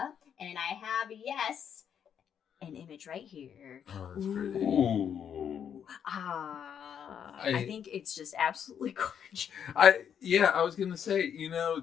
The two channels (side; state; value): right; quieter; 8.3 dB